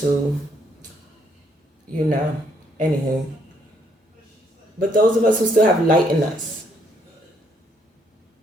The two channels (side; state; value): both; normal; correlation 0.70